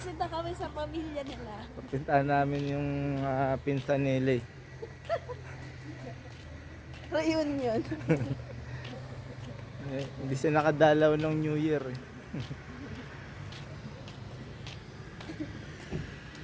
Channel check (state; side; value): identical; both; correlation 1.00